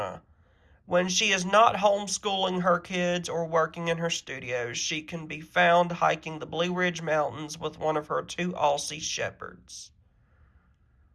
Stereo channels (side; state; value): both; identical; correlation 1.00